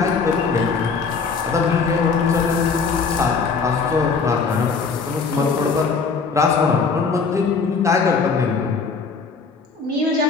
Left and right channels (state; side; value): quieter; right; 5.1 dB